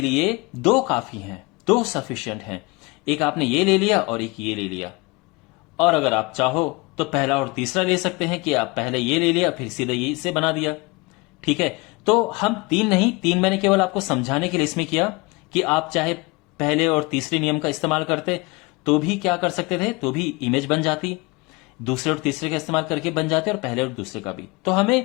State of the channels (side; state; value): right; quieter; 25.5 dB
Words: लिए दो काफी हैं, दो सफिशिएंट हैं। एक आपने ये ले लिया और एक ये ले लिया। और अगर आप चाहो तो पहला और तीसरा ले सकते हैं कि आप पहले ये ले लिया फिर सीधे ये से बना दिया, ठीक है। तो हम तीन नहीं, तीन मैंने केवल आपको समझाने के लिए इसमें किया कि आप चाहे पहले और तीसरे नियम का इस्तेमाल करते तो भी क्या कर सकते थे, तो भी इमेज बन जाती। दूसरे और तीसरे का इस्तेमाल करके बन जाते और पहले और दूसरे का भी। तो